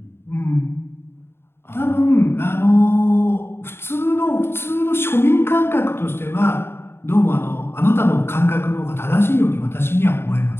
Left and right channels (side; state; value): right; late; 0.11 ms